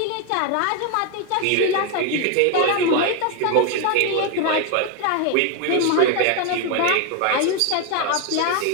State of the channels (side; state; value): both; different; correlation 0.01